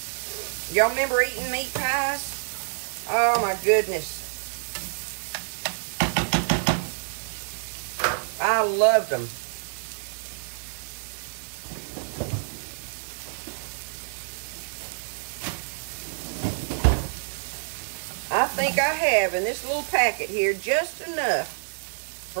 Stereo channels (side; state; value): left; silent; 56 dB below the other